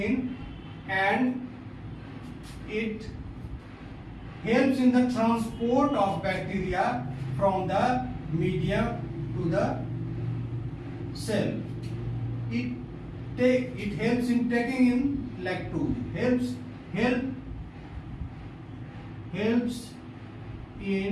and it helps in the transport of bacteria from the medium to the cell. It helps in taking in lactose. Helps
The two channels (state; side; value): identical; both; correlation 1.00